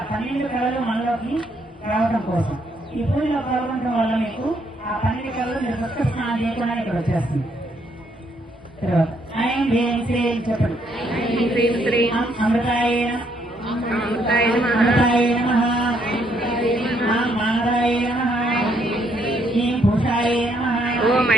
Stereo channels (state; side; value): normal; both; correlation 0.72